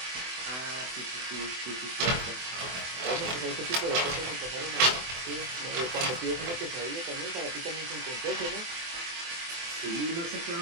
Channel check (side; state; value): left; late; 24 ms